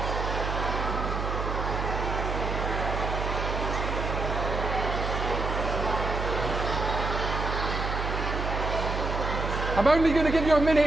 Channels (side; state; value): right; noise; hum, 3 dB below the sound